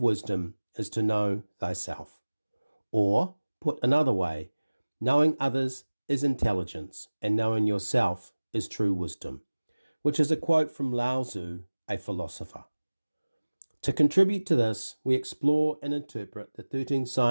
wisdom is to know thyself. Or, put another way, knowing others is intelligence and knowing yourself is true wisdom, which is a quote from Lao Tzu, a philosopher. To contribute to this, we explore and interpret the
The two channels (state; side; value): inverted; both; correlation -1.00